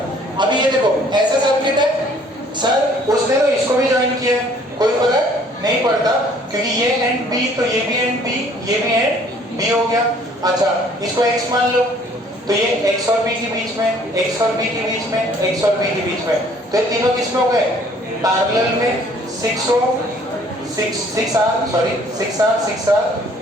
अभी ये देखो ऐसा सर्किट है सर, उसने तो इसको भी ज्वाइन किया है, कोई फर्क नहीं पड़ता क्योंकि ये एंड बी, तो ये भी एंड बी, ये भी एंड बी हो गया। अच्छा इसको x मान लो, तो ये x और b के बीच में, x और b के बीच में, x और b के बीच में, तो ये तीनों किस में हो गए? पैरेलल में। 6R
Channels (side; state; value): both; normal; correlation 0.58